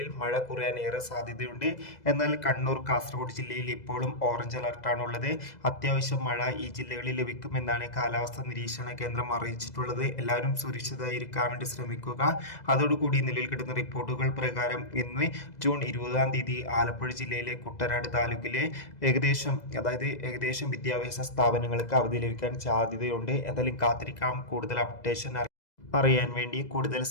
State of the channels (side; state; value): right; late; 2.0 ms